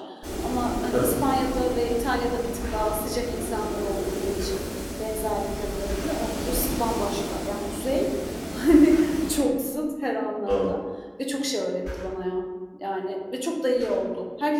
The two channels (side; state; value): both; identical; correlation 1.00